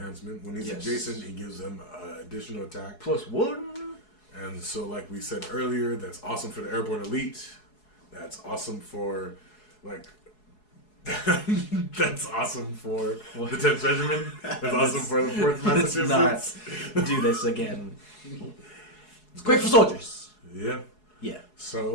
When he's Yes. adjacent, he gives them additional attack. +1. And so, like we said earlier, that's awesome for the airborne elite. That's awesome for, that's awesome for the 10th Regiment. That's awesome for the 4th Massachusetts. Let's not do this again. It's great for soldiers. Yeah. Yeah.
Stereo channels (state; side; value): late; right; 4.7 ms